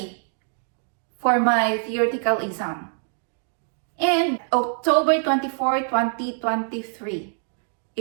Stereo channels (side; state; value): left; silent; 56 dB below the other